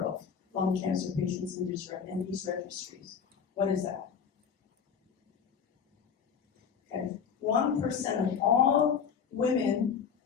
of lung cancer patients in these registries. What is that? Okay, 1% of all women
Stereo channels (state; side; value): quieter; right; 7.0 dB